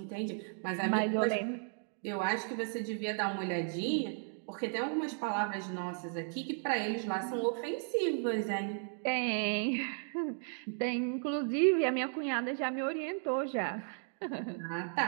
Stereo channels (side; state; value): left; silent; 55 dB below the other